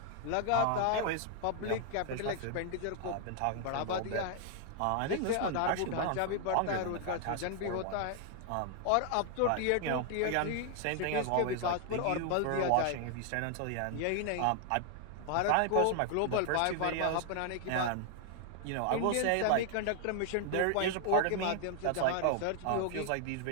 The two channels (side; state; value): both; different; correlation 0.00